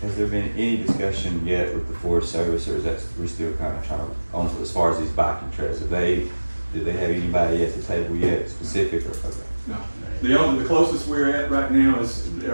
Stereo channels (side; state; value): both; inverted; correlation -1.00